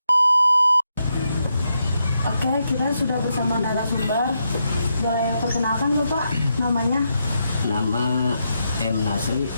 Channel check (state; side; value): inverted; both; correlation -0.82